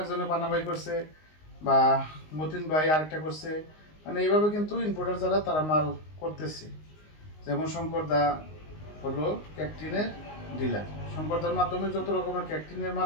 পানাবাই করছে, বা মতিন ভাই আরেকটা করছে। মানে এইভাবে কিন্তু ইম্পোর্টার যারা তারা মাল করতেছে। যেমন শঙ্করদা হলো ক্যাকটিনের ডিলার। শঙ্করদার মাধ্যমে যত রকমের ক্যাকটিনের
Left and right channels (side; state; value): right; late; 19 ms